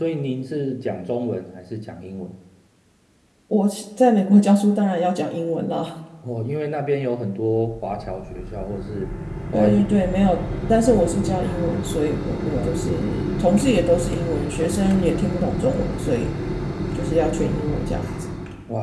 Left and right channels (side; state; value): both; identical; correlation 1.00